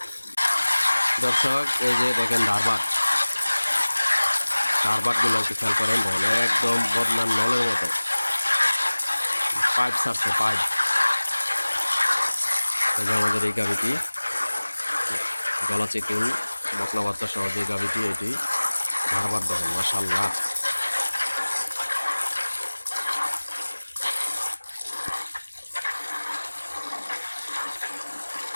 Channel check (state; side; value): inverted; both; correlation -1.00